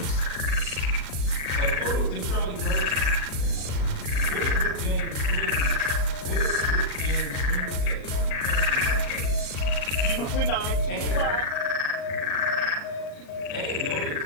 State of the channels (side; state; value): right; late; 38 ms